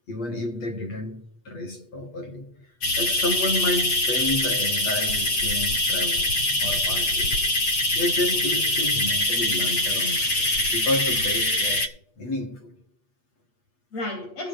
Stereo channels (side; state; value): right; late; 8.3 ms